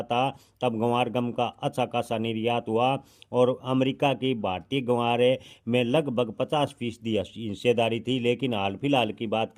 था तब गंवार गम का अच्छा खासा निर्यात हुआ और अमेरिका की भारतीय गंवार में लगभग 50% हिस्सेदारी थी। लेकिन हाल फिलहाल की बात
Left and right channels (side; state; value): both; identical; correlation 1.00